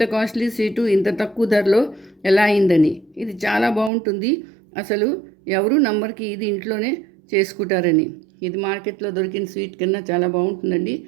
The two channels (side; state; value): left; drops out; at 3.9 s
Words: కాస్ట్లీ స్వీటు ఇంత తక్కువ ధరలో ఎలా అయిందని. ఇది చాలా బాగుంటుంది. అసలు ఎవరు నమ్మరికి ఇది ఇంట్లోనే చేసుకుంటారని. ఇది మార్కెట్లో దొరికిన స్వీట్ కన్నా చాలా బాగుంటుందండి.